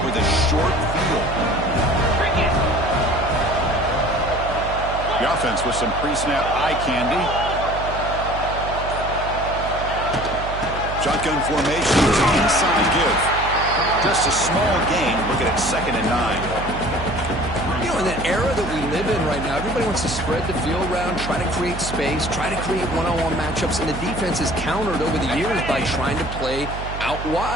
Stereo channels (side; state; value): right; noise; hum, 8 dB below the sound